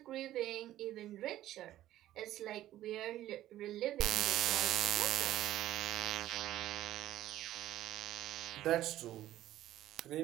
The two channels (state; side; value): quieter; left; 13.8 dB